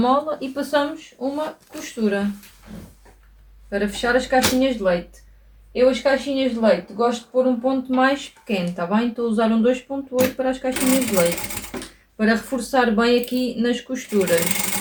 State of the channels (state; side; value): identical; both; correlation 1.00